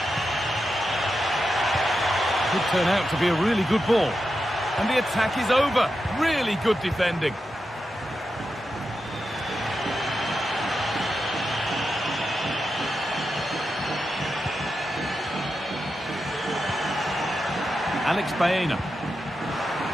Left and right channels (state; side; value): normal; both; correlation 0.88